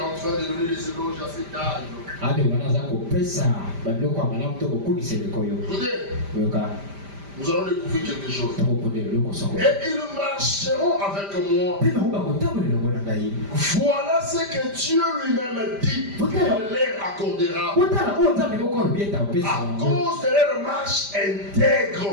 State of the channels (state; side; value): late; left; 5.0 ms